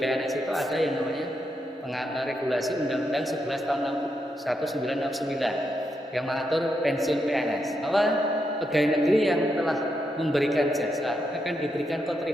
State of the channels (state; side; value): normal; both; correlation 0.82